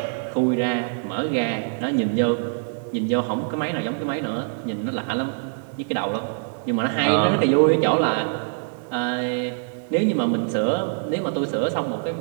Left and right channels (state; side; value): silent; left; 60 dB below the other